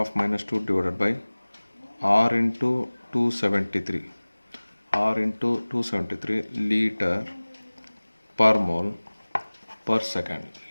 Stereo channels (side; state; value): both; inverted; correlation -1.00